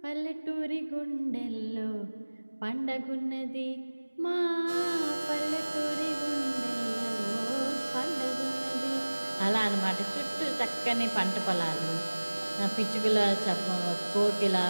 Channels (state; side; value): inverted; both; correlation -1.00